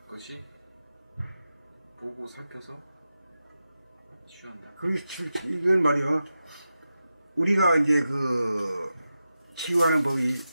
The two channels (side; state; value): both; inverted; correlation -0.91